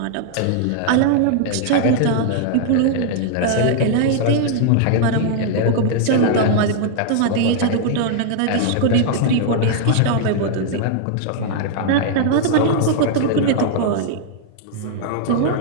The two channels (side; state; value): both; different; correlation -0.01